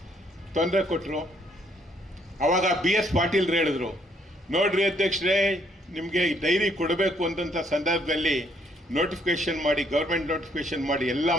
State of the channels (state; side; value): normal; both; correlation 0.69